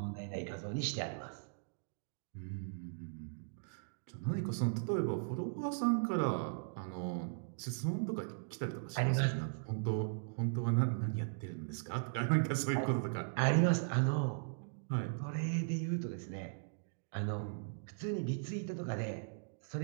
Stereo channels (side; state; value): left; silent; digital silence